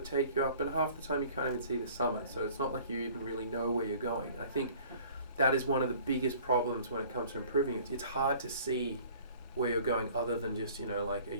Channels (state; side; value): inverted; both; correlation -0.50